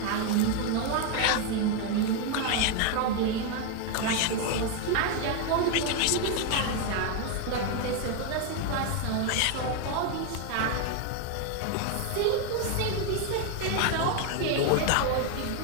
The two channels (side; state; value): both; different; correlation 0.01